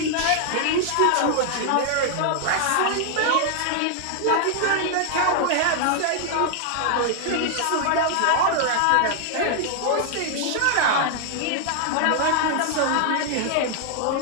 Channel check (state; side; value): different; both; correlation 0.00